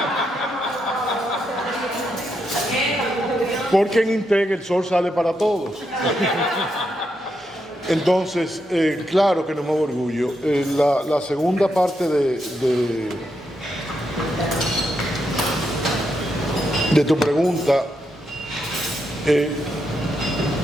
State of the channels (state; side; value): normal; both; correlation 0.82